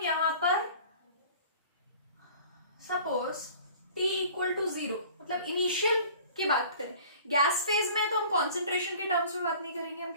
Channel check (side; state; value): both; inverted; correlation -0.46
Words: यहां पर सपोज T इक्वल टू 0, मतलब इनिशियल की बात करें। गैस फेज में तो हम कॉन्सेंट्रेशन के टर्म्स में बात नहीं करेंगे, हम